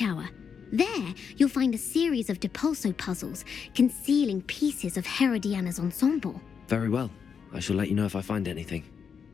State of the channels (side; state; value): right; quieter; 6.6 dB